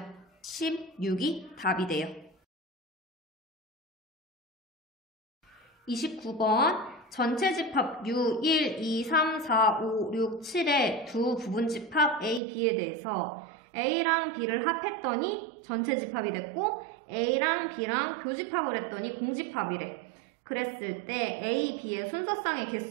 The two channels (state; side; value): drops out; left; at 12.4 s